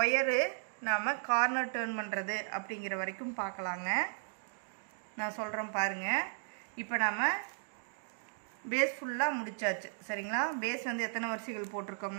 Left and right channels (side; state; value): left; silent; digital silence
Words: ஒயரு நாம் கார்னர் டர்ன் பண்ணுறது அப்படிங்கிற வரைக்கும் பார்க்கலாங்க. நான் சொல்கிறேன் பாருங்கள். இப்போ நாம் பேஸ் ஃபுல்லாக முடிச்சாச்சு. சரிங்களா? பேஸ் வந்து எத்தனை வரிசைகள்